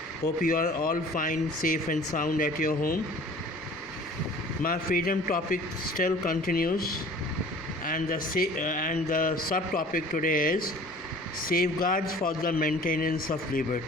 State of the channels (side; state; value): both; normal; correlation 0.47